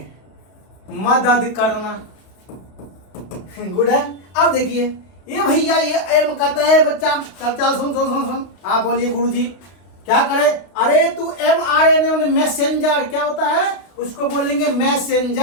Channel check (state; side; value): late; right; 32 ms